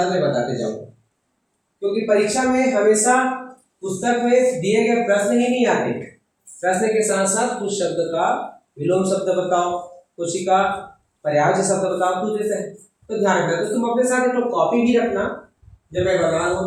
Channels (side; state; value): both; identical; correlation 1.00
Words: मैं बताते जाऊंगा। क्योंकि परीक्षा में हमेशा पुस्तक में दिए गए प्रश्न ही नहीं आते, प्रश्न के साथ साथ कुछ शब्द का विलोम शब्द बताओ, कुछ का पर्यायवाची शब्द बताओ, कुछ जैसे तो ध्यान रखना। तो तुम अपने साथ एक तो कॉपी भी रखना, जब मैं बता रहा